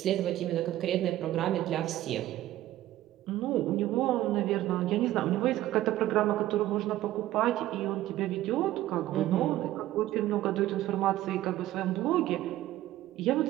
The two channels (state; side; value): quieter; left; 14.6 dB